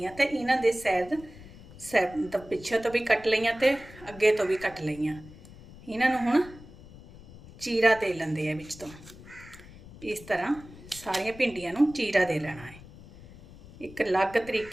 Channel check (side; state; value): left; noise; rumble, 19 dB below the sound